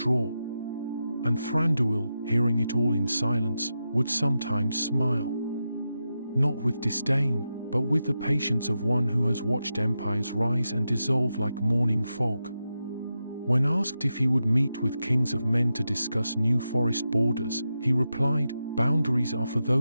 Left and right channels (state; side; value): inverted; both; correlation -0.89